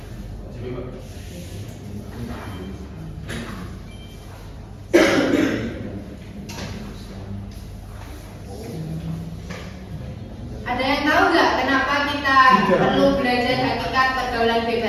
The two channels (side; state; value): both; identical; correlation 1.00